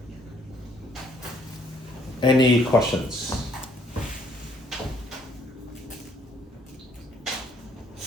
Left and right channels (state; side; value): normal; both; correlation 0.65